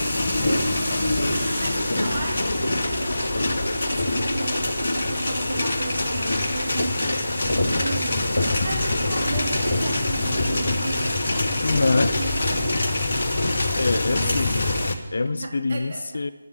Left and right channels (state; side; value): inverted; both; correlation -0.91